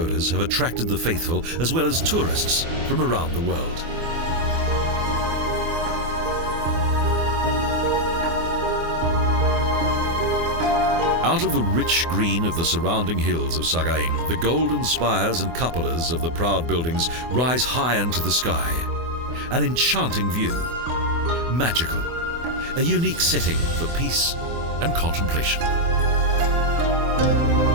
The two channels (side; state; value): left; late; 24 ms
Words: have attracted the faithful as well as tourists from around the world. Out of the rich green of the surrounding hills of Sagaing, the golden spires and cupolas of the proud buildings rise high into the sky. An enchanting view, magical, a unique setting for peace and contemplation.